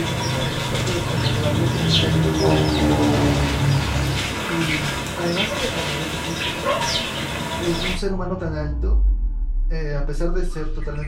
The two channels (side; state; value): both; identical; correlation 1.00